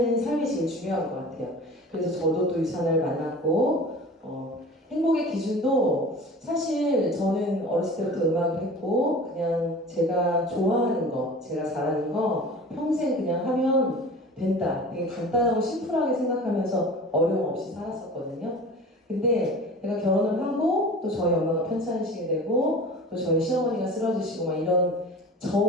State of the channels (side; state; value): both; normal; correlation 0.40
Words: 삶이 제일 중요한 것 같아요. 그래서 저도 또 유산을 만났고 행복의 기준도 사실 저는 어렸을 때부터 음악을 했고 그냥 제가 좋아하는 거, 제가 잘하는 거 평생 그냥 하면 된다. 되게 간단하고 심플하게 생각하면서 어려움 없이 살았었거든요. 근데 제가 결혼을 하고 또 저희 엄마가 편찮으시게 되고 또 저희 시어머니가 쓰러지시고 막 이런